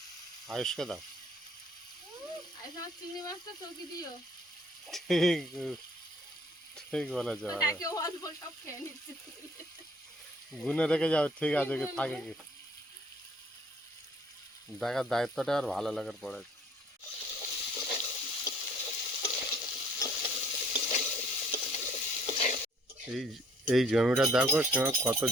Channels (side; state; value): both; normal; correlation 0.57